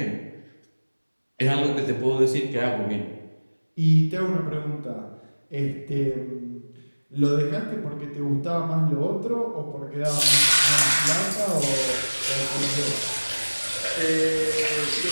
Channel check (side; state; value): both; inverted; correlation -1.00